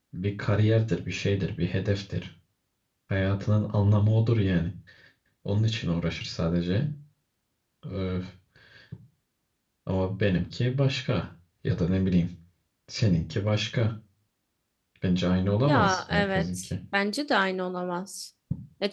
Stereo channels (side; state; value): both; identical; correlation 1.00